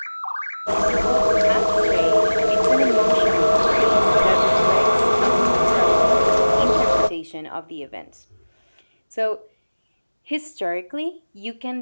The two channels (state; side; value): inverted; both; correlation -1.00